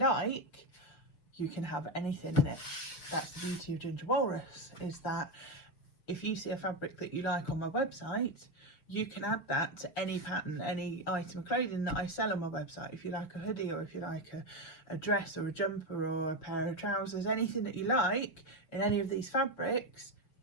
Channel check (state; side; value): late; right; 6.8 ms